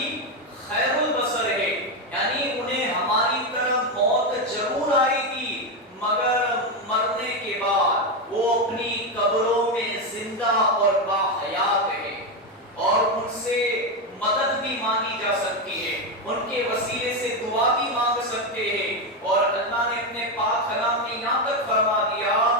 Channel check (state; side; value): normal; both; correlation 0.09